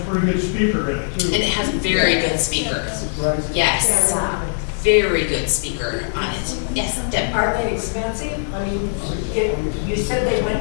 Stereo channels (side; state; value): right; silent; digital silence